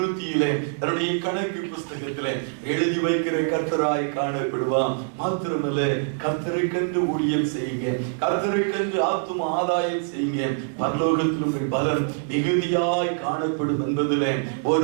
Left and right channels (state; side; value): silent; left; 61 dB below the other